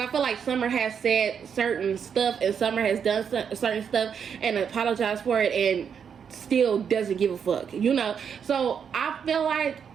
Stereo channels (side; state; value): left; quieter; 7.3 dB